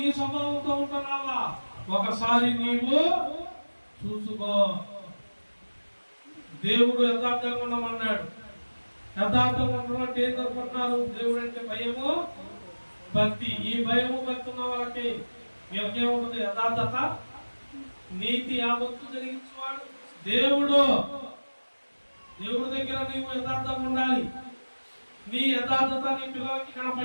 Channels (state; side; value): inverted; both; correlation -1.00